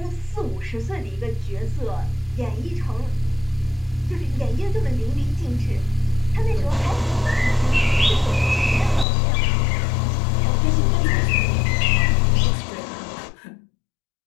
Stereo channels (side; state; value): right; drops out; at 9.1 s